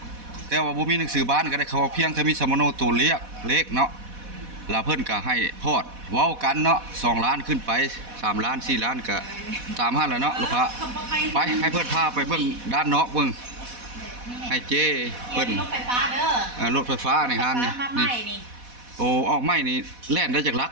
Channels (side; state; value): left; late; 4.1 ms